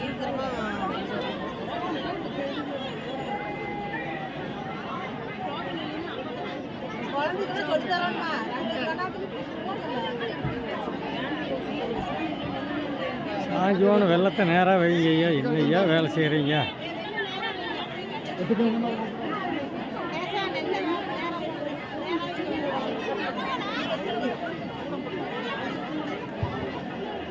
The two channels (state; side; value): identical; both; correlation 1.00